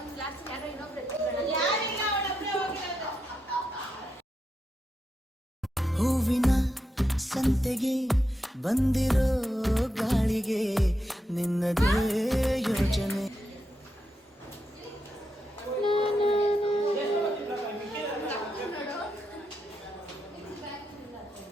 ಕ್ಲಾಸ್ ಯಾರೋ ಇನ್ನೊಬ್ರು ಹೂವಿನ ಸಂತೆಗೆ ಬಂದಿರೋ ಗಾಳಿಗೆ ನಿನ್ನದೇ ಯೋಚನೆ.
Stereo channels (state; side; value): normal; both; correlation 0.84